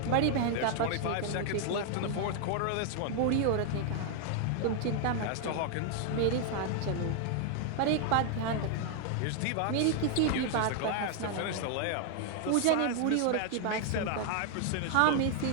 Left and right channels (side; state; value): both; different; correlation 0.00